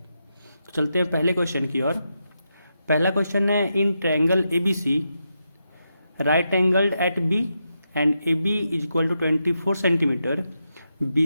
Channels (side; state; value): both; inverted; correlation -0.85